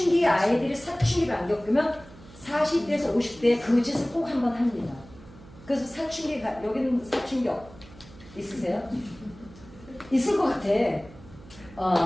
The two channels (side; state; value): right; noise; hum, 21 dB below the sound